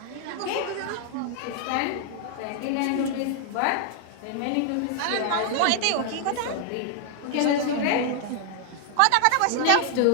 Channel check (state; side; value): different; both; correlation 0.00